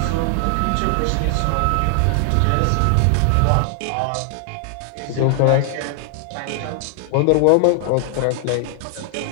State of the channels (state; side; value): different; both; correlation 0.00